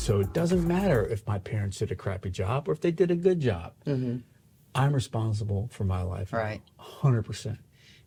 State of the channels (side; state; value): both; identical; correlation 1.00